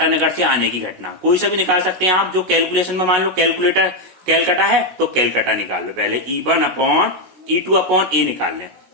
से आने की घटना। कोई सा भी निकाल सकते हैं आप, जो कैलकुलेशन में मान लो कैलकुलेटर कैलकाटा है तो कैलकाटा निकाल लो। पहले E1/E2/A निकाल लें।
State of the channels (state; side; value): late; left; 16 ms